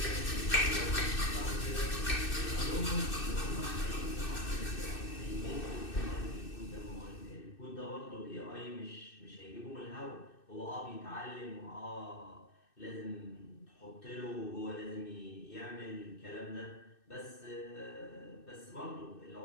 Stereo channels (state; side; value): late; right; 2.6 ms